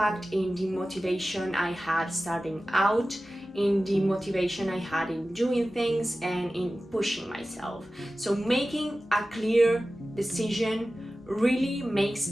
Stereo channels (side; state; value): both; normal; correlation 0.95